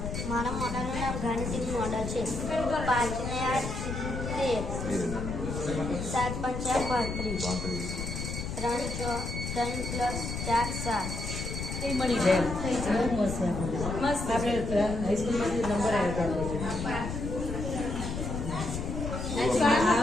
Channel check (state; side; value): noise; left; rumble, 5 dB below the sound